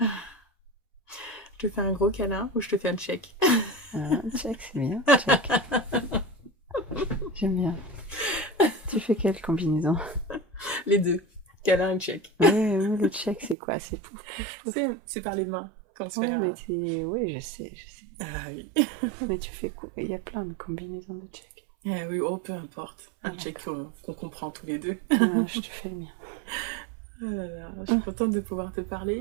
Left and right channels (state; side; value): drops out; left; at 13.6 s